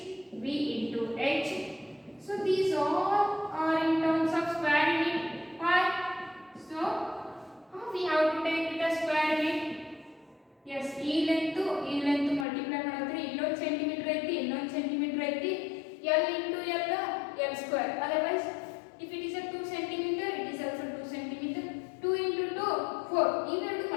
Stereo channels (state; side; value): drops out; right; at 12.5 s